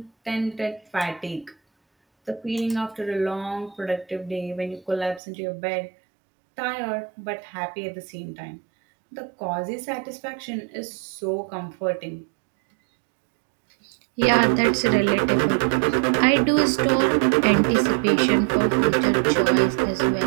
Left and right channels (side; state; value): left; drops out; at 5.2 s